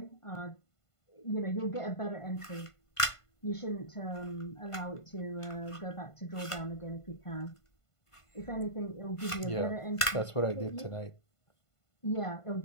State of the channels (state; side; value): late; right; 1.5 ms